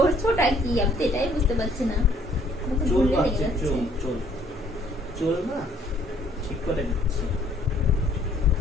কি? আমি তো এটাই বুঝতে পারছি না। চুল বাঁধছি, চুল চুল চুল না ঠিক করে দিচ্ছি।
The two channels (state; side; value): normal; both; correlation 0.61